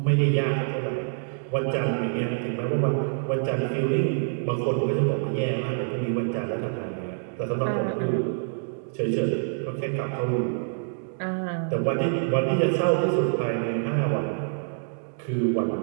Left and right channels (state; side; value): silent; left; digital silence